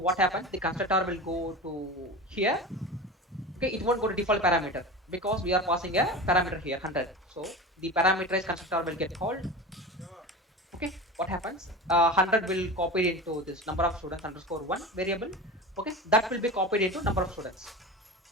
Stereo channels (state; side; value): normal; both; correlation 0.30